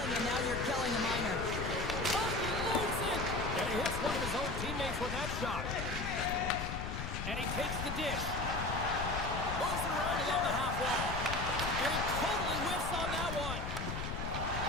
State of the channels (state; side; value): noise; left; rumble, 4 dB below the sound